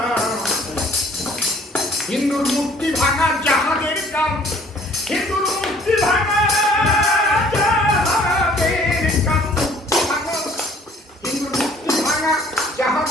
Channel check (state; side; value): normal; both; correlation 0.56